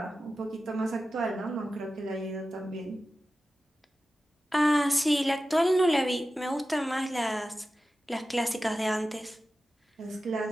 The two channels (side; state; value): both; normal; correlation 0.94